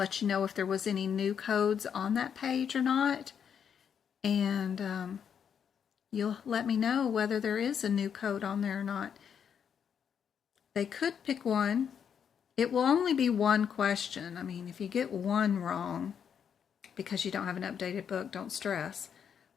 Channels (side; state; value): right; quieter; 7.7 dB